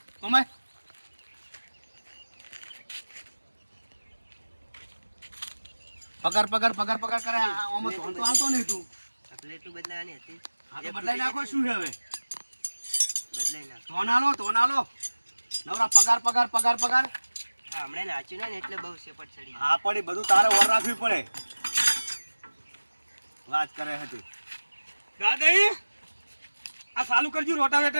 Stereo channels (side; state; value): both; inverted; correlation -1.00